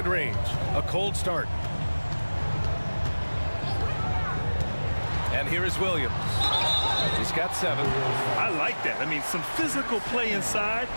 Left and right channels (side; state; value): both; inverted; correlation -1.00